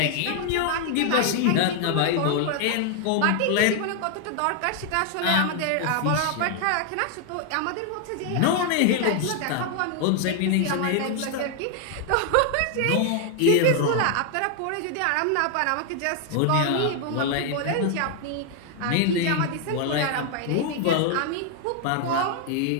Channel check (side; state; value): both; different; correlation 0.00